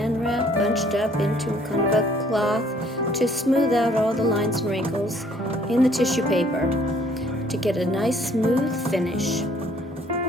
wrap bunched up into kind of a cloth to smooth out all the lines and wrinkles in the tissue paper to get a nice smooth finish.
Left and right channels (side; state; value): both; normal; correlation 0.61